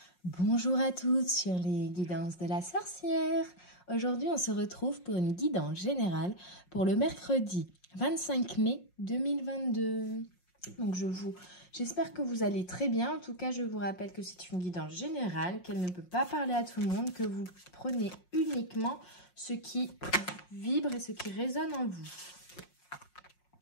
Bonjour à tous sur les guidances de la sorcière. Aujourd'hui, on se retrouve pour une guidance générale pour le mercredi 25 mai 2022. Donc j'espère que vous allez très bien. En tout cas, je vous rappelle que c'est une guidance générale, qu'elle ne peut pas parler à tout le monde, que vous prenez uniquement ce qui vibre et ce qui résonne en vous.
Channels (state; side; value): late; right; 5.6 ms